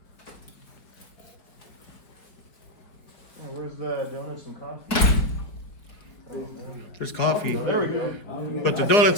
Where's the donuts and coffee? There's coffee, There we go. but the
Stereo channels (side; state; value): right; late; 4.5 ms